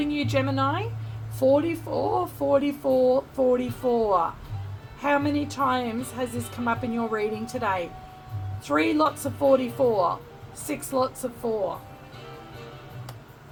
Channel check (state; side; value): identical; both; correlation 1.00